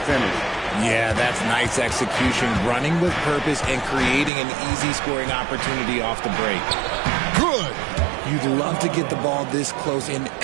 finish. Yeah, that's nice execution, running with purpose and creating an easy scoring opportunity off the break. Good. You'd love to get the ball this close in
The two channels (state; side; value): drops out; left; at 4.3 s